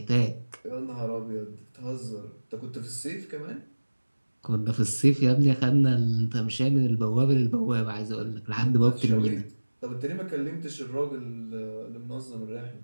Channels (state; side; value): inverted; both; correlation -1.00